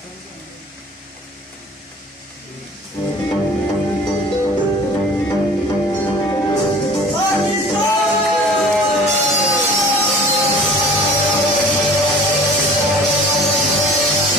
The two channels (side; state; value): both; normal; correlation 0.46